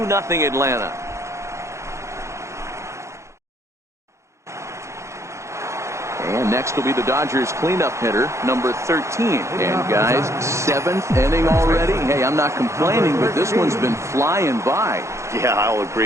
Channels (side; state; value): left; late; 0.14 ms